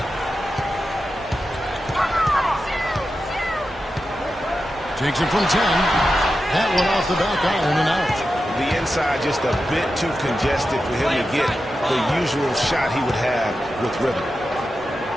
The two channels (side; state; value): both; normal; correlation 0.91